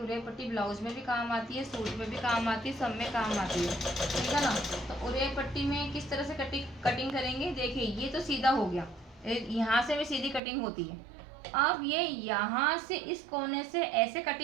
उरेब पट्टी ब्लाउज में भी काम आती है, सूट में भी काम आती है, सब में काम आती है, ठीक है ना। तो उरेब पट्टी में किस तरह से कटिंग करेंगे, देखिए ये तो सीधा हो गया, यहाँ से भी सीधी कटिंग होती है। अब ये यहाँ से इस कोने से ऐसे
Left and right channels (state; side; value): drops out; left; at 10.4 s